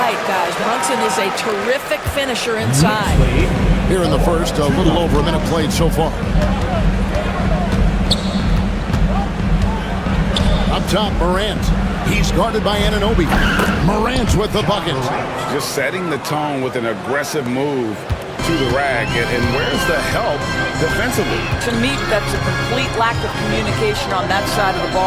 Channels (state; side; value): identical; both; correlation 1.00